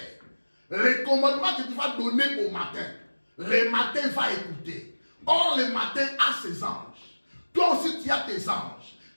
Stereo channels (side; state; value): both; inverted; correlation -1.00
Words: Les commandements que tu vas donner au matin. Le matin va écouter. Or, le matin a ses anges. Toi aussi, tu as tes anges.